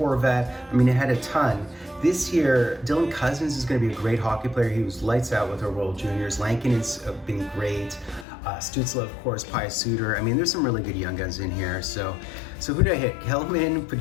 I mean, it had a ton. This year, Dylan Cousins is going to be a great hockey player. He was lights out with our World Juniors. Lankin has been great. Stützle, of course, Pius Suter. I mean, there's some really good Young Guns in here. So who did I hit? Hellman,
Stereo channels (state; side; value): drops out; right; at 8.2 s